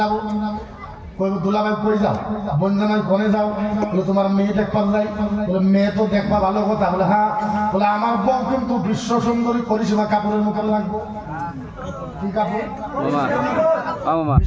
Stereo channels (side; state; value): both; identical; correlation 1.00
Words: দুলাভাই কই যাও? বনজানাই কোনে যাও? বলে তোমার মেয়ে দেখবার যাই। বলে মেয়ে তো দেখবা ভালো কথা। বলে হ্যাঁ। বলে আমার বউ কিন্তু বিশ্ব সুন্দরী করিসীমা কাপড়ের মুখে লাগবো। কি কাপড়?